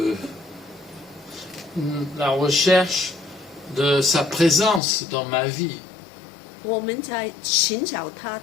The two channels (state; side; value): drops out; right; at 4.8 s